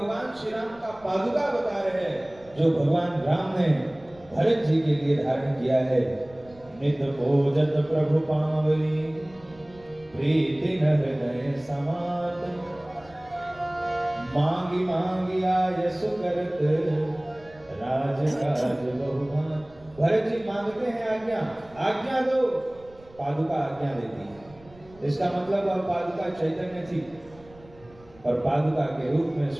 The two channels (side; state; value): right; noise; rumble, 25 dB below the sound